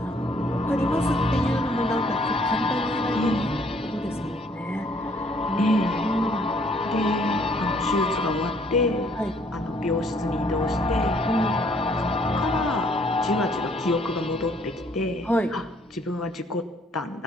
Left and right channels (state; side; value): normal; both; correlation 0.63